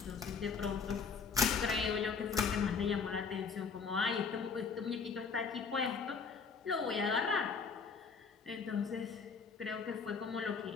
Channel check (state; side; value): quieter; right; 5.5 dB